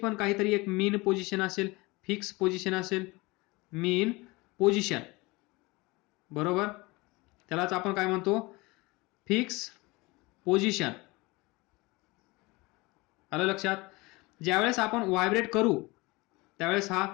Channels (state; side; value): quieter; right; 23.6 dB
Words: काहीतरी एक मीन पोझिशन असेल, फिक्स पोझिशन असेल, मीन पोझिशन, बरोबर. त्यालाच आपण काय म्हणतो, फिक्स पोझिशन. आलं लक्षात. ज्यावेळेस आपण व्हायब्रेट करू त्यावेळेस हा